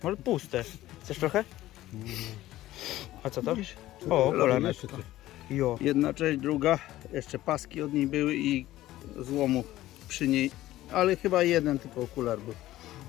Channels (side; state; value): right; quieter; 15.3 dB